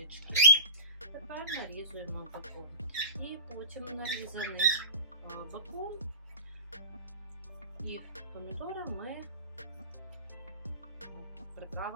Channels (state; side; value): inverted; both; correlation -0.38